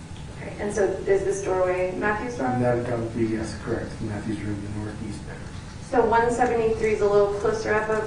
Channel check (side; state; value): both; identical; correlation 1.00